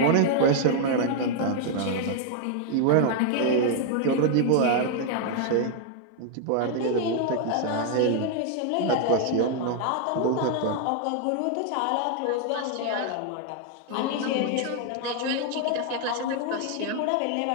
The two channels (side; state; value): both; different; correlation 0.00